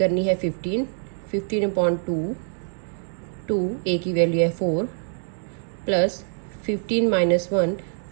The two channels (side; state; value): left; silent; digital silence